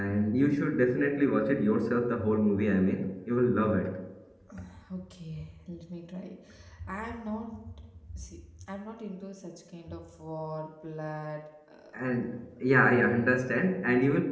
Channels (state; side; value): identical; both; correlation 1.00